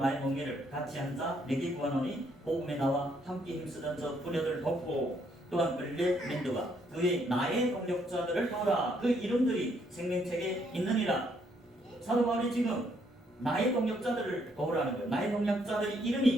멍에를 같이 한자 내게 구하노니 복음에 나와 함께 힘쓰던 저 부녀들 돕고 또한 끌레 멘드와 그의 나의 동력자들을 도우라. 그 이름들이 생명책에 있느니라. 사도 바울이 지금 나의 동력자들을 도우라는 거예요. 나의 동력자들의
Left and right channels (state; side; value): normal; both; correlation 0.70